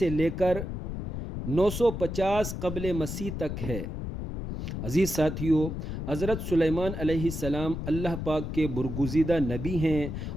لے کر 950 قبل مسیح تک ہے۔ عزیز ساتھیو، حضرت سلیمان علیہ السلام اللہ پاک کے برگزیدہ نبی ہیں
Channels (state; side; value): noise; left; rumble, 5 dB below the sound